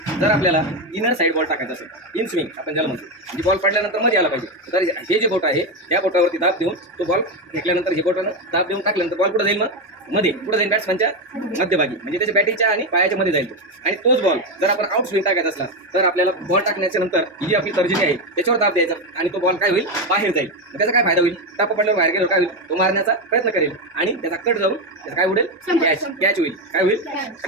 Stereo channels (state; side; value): normal; both; correlation 0.10